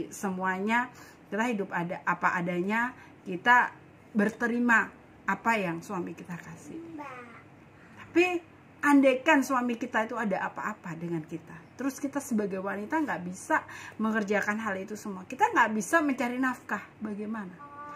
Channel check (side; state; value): both; identical; correlation 1.00